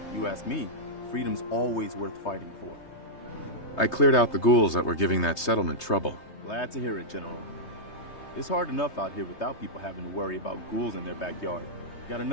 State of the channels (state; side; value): late; right; 3.2 ms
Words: You ask me, freedom's always worth fighting for. I cleared out the ghouls that were giving that settlement trouble. Glad to hear it, General. It's hard enough out here without people having to worry about ghouls in their backyard. Got